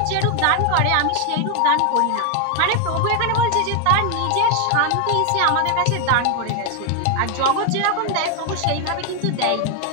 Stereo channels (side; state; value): both; different; correlation 0.01